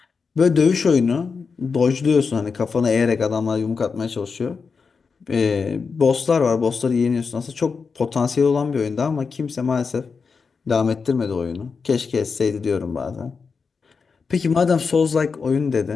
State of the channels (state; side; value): quieter; right; 5.2 dB